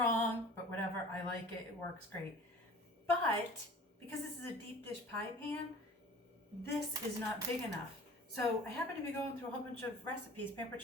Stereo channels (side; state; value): both; normal; correlation 0.44